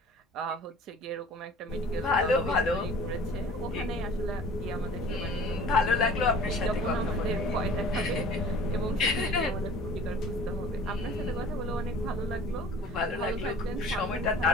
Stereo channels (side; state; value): both; normal; correlation 0.46